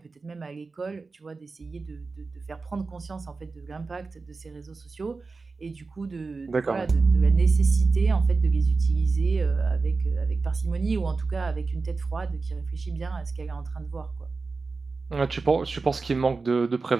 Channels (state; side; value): quieter; left; 4.1 dB